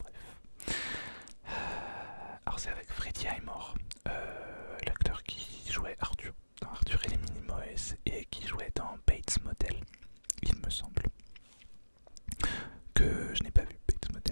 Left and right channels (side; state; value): both; inverted; correlation -1.00